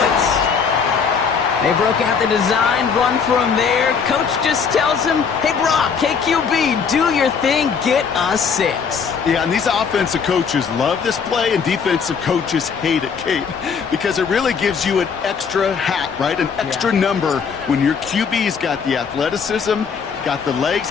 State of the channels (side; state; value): right; quieter; 6.1 dB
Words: They broke out the design run from there. Coach just tells him, hey, Brock, KQB, do your thing, get us 6. Yeah, and these offensive coaches love this play, and defensive coaches hate it, Kate, because it really gives you an extra hat, right? An extra number when your QB's got the athleticism, got the legs,